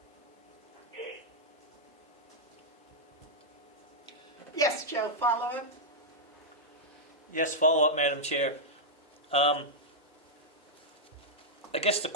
Yes, Joe, follow up? Yes, follow up, Madam Chair. I guess the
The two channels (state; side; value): normal; both; correlation -0.06